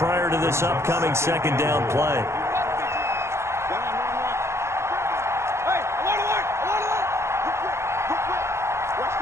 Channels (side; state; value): left; late; 0.13 ms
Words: to this upcoming 2nd down play.